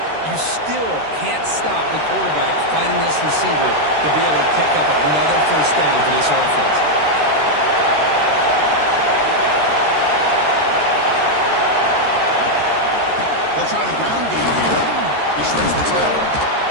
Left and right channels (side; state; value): left; late; 13 ms